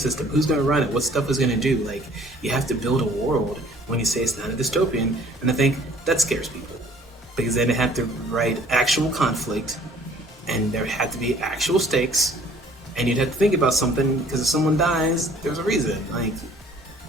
Who's going to run it? What stuff is going to do? Like, you have to build a world when you say it's not a dystopian. And I think that scares people, because then they have to write actual conflict, and there have to be actual stakes, and you'd have to think about something, because if someone dies, there's a reason. Like,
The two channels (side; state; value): both; normal; correlation 0.55